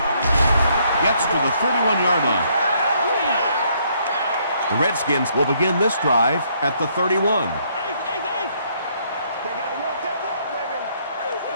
Gets to the 31-yard line. The Redskins will begin this drive at the 31.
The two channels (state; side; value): inverted; both; correlation -0.69